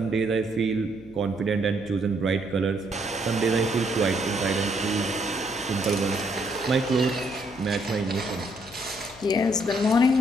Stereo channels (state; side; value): noise; left; hum, 21 dB below the sound